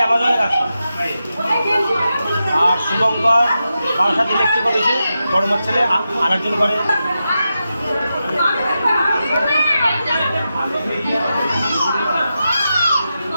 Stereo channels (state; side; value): inverted; both; correlation -0.89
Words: আর শুভঙ্কর বারাসাত ইলেকট্রিক অফিসে বড় মার ছেলে আরেকজন করে।